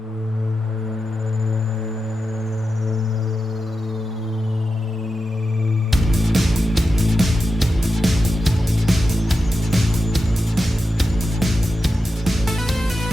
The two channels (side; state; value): both; normal; correlation 0.90